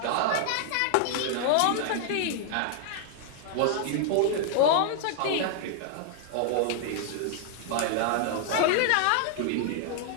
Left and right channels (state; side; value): different; both; correlation 0.00